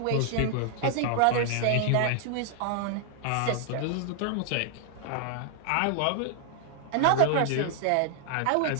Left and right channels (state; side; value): different; both; correlation -0.01